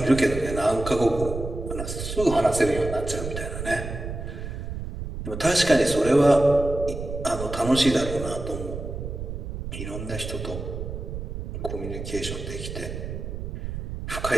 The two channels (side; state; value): right; noise; rumble, 6 dB below the sound